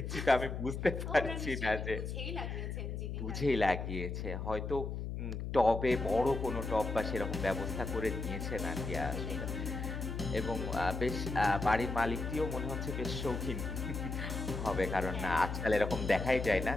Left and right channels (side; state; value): left; noise; hum, 4 dB below the sound